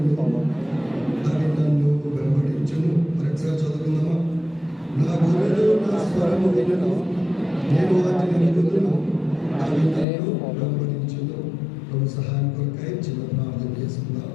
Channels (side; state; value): right; drops out; at 10.1 s